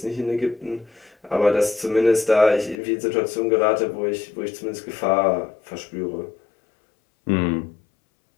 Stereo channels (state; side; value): drops out; right; at 2.8 s